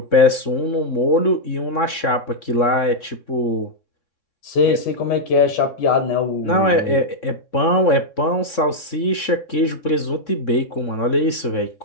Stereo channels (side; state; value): right; late; 3.6 ms